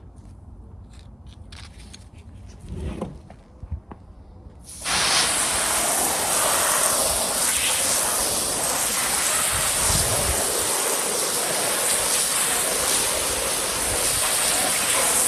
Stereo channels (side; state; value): both; identical; correlation 1.00